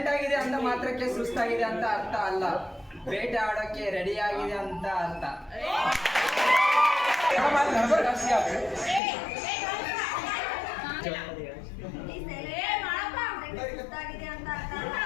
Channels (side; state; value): right; drops out; at 9.0 s